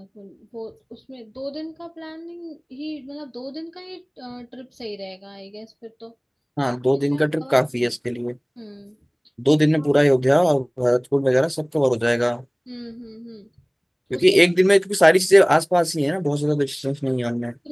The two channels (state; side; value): identical; both; correlation 1.00